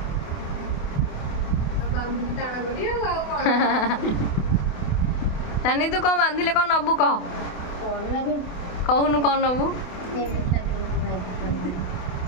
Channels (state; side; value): late; right; 28 ms